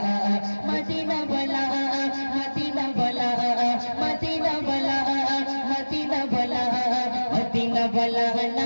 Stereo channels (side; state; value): both; inverted; correlation -1.00